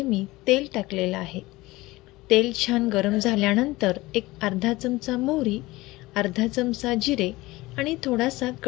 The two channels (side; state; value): right; quieter; 19.8 dB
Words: मी तेल टाकलेलं आहे। तेल छान गरम झाल्यानंतर एक अर्धा चमचा मोहरी, अर्धा चमचा जिरे आणि थोडासा